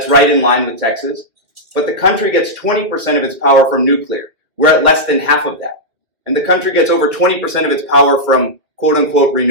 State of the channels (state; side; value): late; left; 2.4 ms